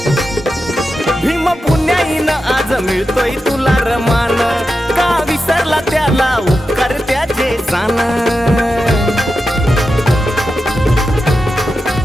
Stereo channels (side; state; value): both; normal; correlation 0.90